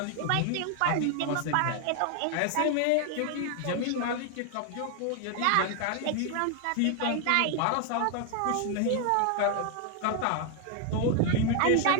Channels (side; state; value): both; different; correlation 0.00